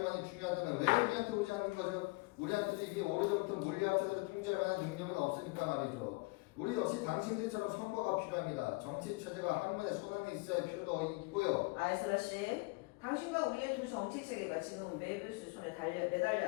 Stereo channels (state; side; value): quieter; right; 26.2 dB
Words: 중요하다면 왜 우리한테 오지 않는 거죠? 우리한테도 이미 오래전부터 물리학자들을 통제할 만한 능력은 없으니까 말이죠. 우리 역시 당신들처럼 선거가 필요합니다. 정치 체제가 학문의 손안에 있어야 할 필요도 있고요. 아이슬라 씨, 당신과 우리의 두 정치 체계가 지금은 메비우스 손에